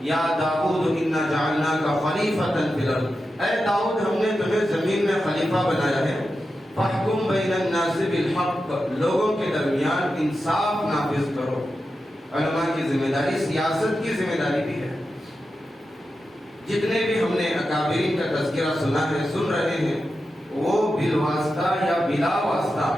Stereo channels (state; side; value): normal; both; correlation 0.90